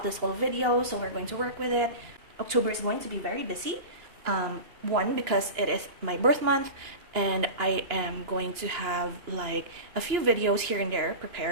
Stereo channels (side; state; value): left; late; 2.9 ms